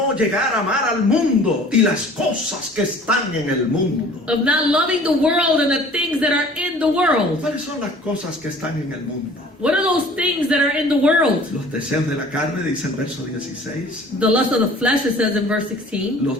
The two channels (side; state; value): both; normal; correlation 0.49